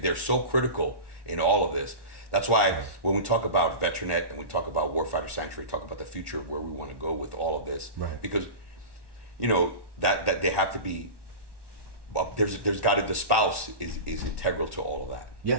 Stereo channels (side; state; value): left; late; 1.1 ms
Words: so critical in all of this. That's why when we talk about Veteranette and we talk about Warfighter Sanctuary, talk about the future of where we want to go with all of this. Right. Because, you know, that they have to be. There's got to, the spouse is integral to all of that.